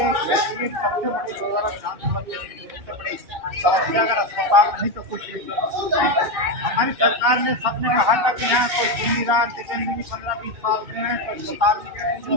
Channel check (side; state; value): left; late; 2.6 ms